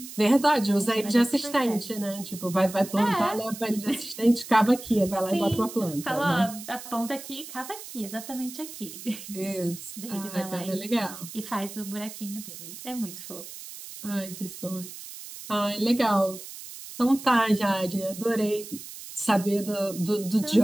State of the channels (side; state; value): right; noise; hiss, 13 dB below the sound